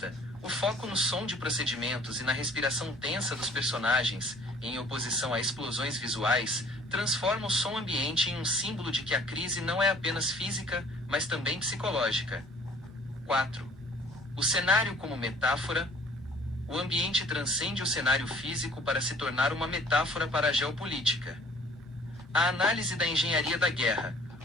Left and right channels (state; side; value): normal; both; correlation 0.54